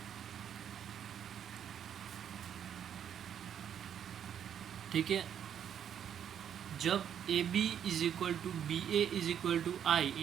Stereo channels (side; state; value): left; quieter; 9.0 dB